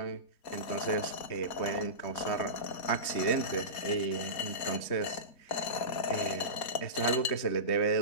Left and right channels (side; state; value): right; late; 4.2 ms